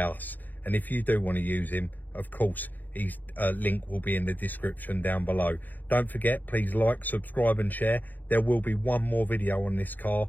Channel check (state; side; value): late; right; 0.086 ms